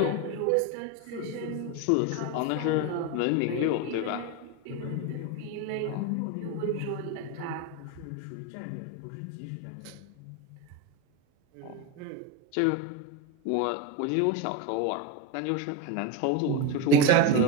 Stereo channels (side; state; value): both; different; correlation 0.04